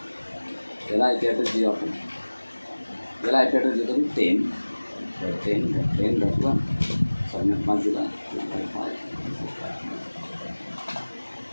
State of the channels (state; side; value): inverted; both; correlation -1.00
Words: याला आय पी ॲड्रेस देऊ आपण. याला आय पी ॲड्रेस देतो मी 10.10.1 सबनेट मार्क दिला.